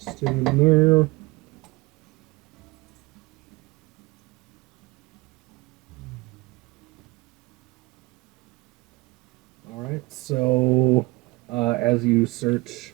in there? Alright, so as you search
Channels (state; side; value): quieter; left; 22.6 dB